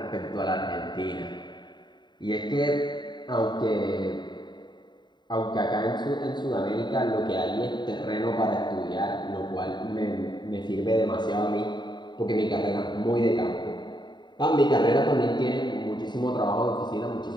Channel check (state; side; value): late; right; 0.21 ms